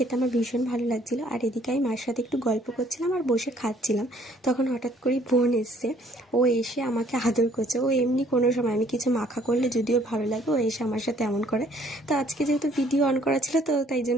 আমার ভীষণ ভালো লাগছিলো। আর এদিকে আমি মার সাথে একটু গল্প করছিলাম আর বসে খাচ্ছিলাম। তখন হঠাৎ করেই বোন এসছে। ও এসে আমাকে আদর করছে। ও এমনি কোনো সময় আমি কিছু মাখা করলে যদিও ভালো লাগে, ও এসে আমার সাথে এমন করে। তো আজকে যেহেতু ভিডিও অন করা ছিল, তো তাই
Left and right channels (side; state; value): both; normal; correlation 0.61